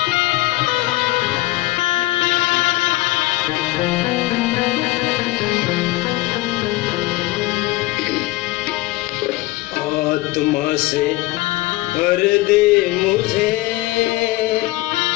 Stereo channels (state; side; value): quieter; right; 19.2 dB